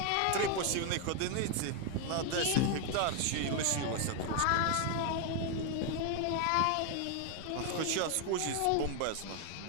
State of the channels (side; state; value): both; different; correlation 0.01